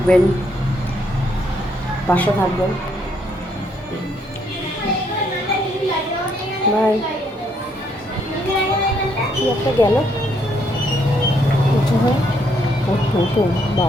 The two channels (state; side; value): normal; both; correlation 0.71